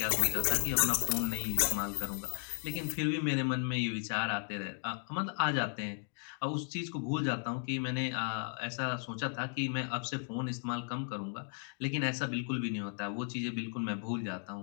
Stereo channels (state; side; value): silent; right; 54 dB below the other